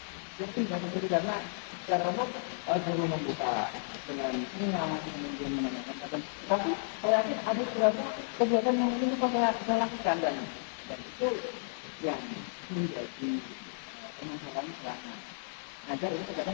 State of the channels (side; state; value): right; silent; digital silence